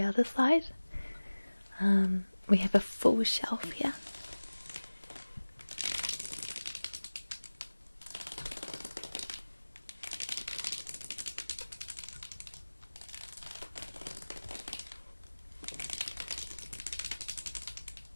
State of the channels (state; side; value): inverted; both; correlation -1.00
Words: other side. We have a full shelf here.